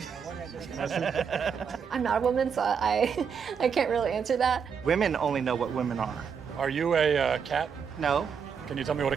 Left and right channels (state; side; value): quieter; left; 6.7 dB